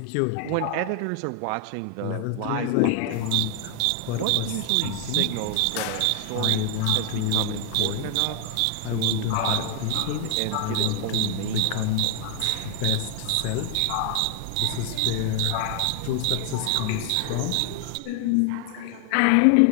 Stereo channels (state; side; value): different; both; correlation 0.00